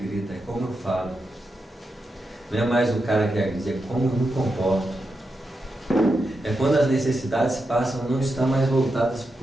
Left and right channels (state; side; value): normal; both; correlation 0.87